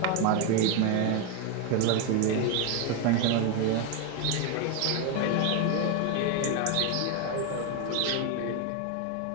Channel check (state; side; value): different; both; correlation 0.02